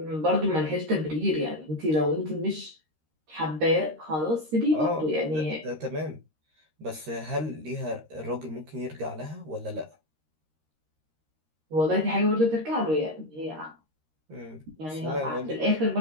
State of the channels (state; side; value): late; left; 13 ms